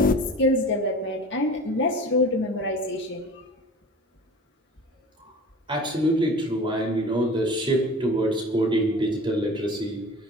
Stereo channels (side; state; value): both; normal; correlation 0.39